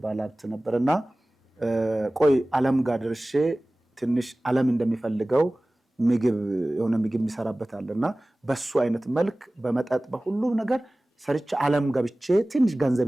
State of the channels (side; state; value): both; normal; correlation 0.98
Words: ባላብት ነበርና ቆይ ዓለም ጋር ድርሼ ትንሽ ዓለም እንደሚፈልገው ምግብ የሆነ ምግብ የሚሰራበታልና በሱ አይነት መልክ በመጣጥ በሁሉ ነገር ሰርቼ ዓለም ገብቼ ትንሽ